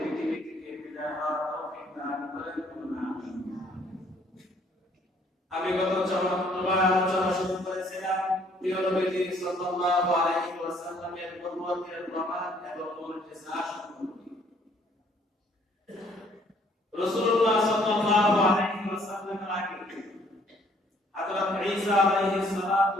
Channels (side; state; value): both; normal; correlation 0.63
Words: থেকে বিদায় হওয়ার তৌফিক দান করেন। আমি গত চরমবার আলোচনা শুরু করেছিলাম প্রিয় নবীজি সাল্লাল্লাহু আলাইহি ওয়াসাল্লামের নবুয়তের প্রমাণ এবং মুজিজা সম্পর্কে। রাসূলুল্লাহ সাল্লাল্লাহু আলাইহি ওয়াসাল্লামের আগে হযরত ঈসা আলাইহিস সালাতু